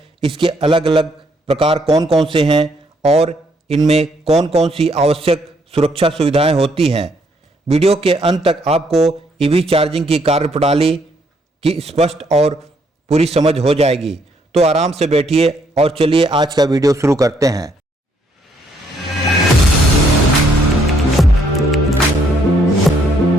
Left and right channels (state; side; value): normal; both; correlation 0.70